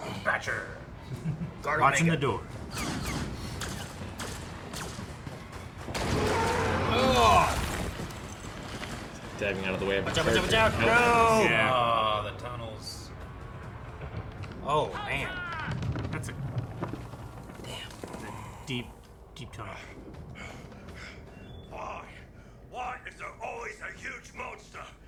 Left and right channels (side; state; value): both; identical; correlation 1.00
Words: Thatcher! Guard Watching the Omega. door. Diving out of the way of Watch out, watch out, watch out! character. No! Yeah. Oh, the tunnels. Oh, man. That's a deep, deep tunnel. Why? Why is there always a huge monster?